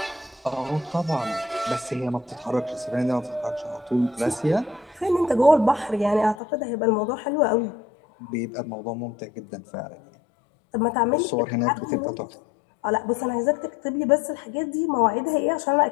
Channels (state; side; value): drops out; right; at 6.4 s